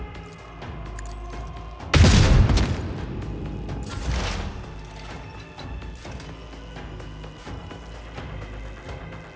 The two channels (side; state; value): both; identical; correlation 1.00